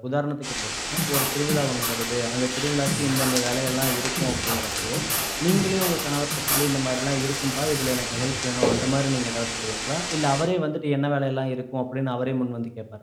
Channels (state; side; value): identical; both; correlation 1.00